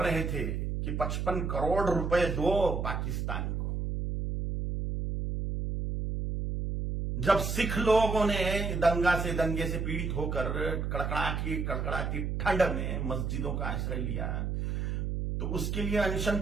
थे कि 55 करोड़ रुपए दो पाकिस्तान को। जब सिख लोगों ने दंगे से पीड़ित होकर कड़कड़ाती ठंड में मस्जिदों का आश्रय लिया, तो उसके लिए अनशन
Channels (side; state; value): right; noise; hum, 2 dB below the sound